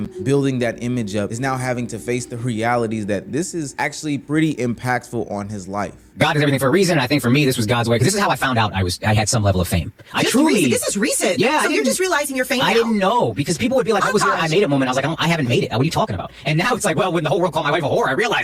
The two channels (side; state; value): both; identical; correlation 1.00